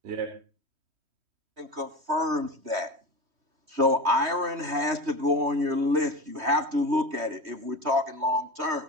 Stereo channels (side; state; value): left; late; 3.1 ms